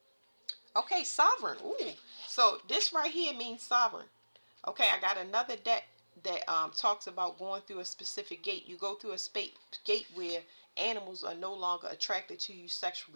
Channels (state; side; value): inverted; both; correlation -1.00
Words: Okay, sovereign. Ooh. So this right here means sovereign. Okay, I got another deck that talks about going through a specific gate. You go through a gate where animals are no longer attracted to you